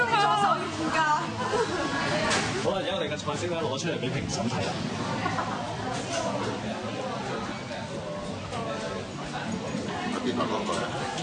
好啦，而家我哋嘅菜式咧攞出嚟俾評審睇啦。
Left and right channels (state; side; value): identical; both; correlation 1.00